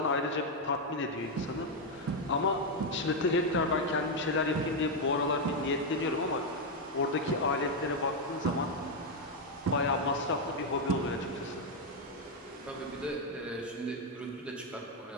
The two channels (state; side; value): normal; both; correlation 0.02